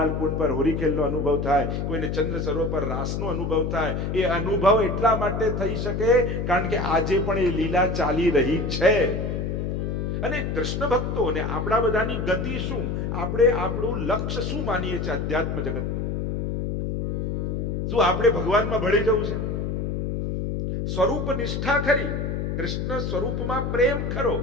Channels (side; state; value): left; noise; hum, 2 dB below the sound